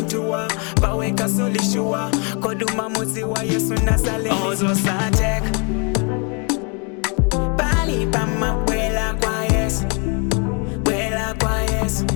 Baweka solishua, koduma muzi wa Yesu nasale. Ozo satek Bali pama wela kwa Yesu, wela kwa Yesu.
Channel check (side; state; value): right; quieter; 35.2 dB